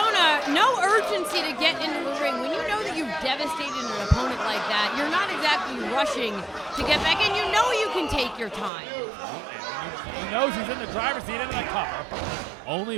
no urgency to get into the ring. When you know that you've devastated an opponent like that, you're not exactly rushing to get back in. You know you can take your time. He knows he's in the driver's seat into the cover.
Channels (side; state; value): left; drops out; at 8.7 s